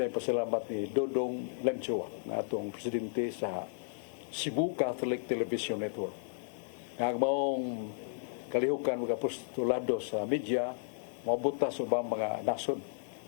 pasalamat ni Dodong Lanchoa na atong presidente sa Cebu Catholic Television Network. Ang maong kalihukan mga postulado sa media, mabuta sa ubang mga nasod,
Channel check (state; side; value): silent; right; digital silence